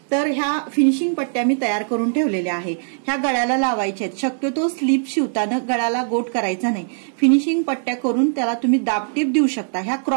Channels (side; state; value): left; silent; digital silence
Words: तर ह्या फिनिशिंग पट्ट्या मी तयार करून ठेवलेल्या आहे। ह्या गळ्याला लावायच्या आहेत। शक्यतो स्लीप शिवताना गळ्याला गोट करायचा नाही। फिनिशिंग पट्ट्या करून त्याला तुम्ही दाबटीप देऊ शकता। ह्या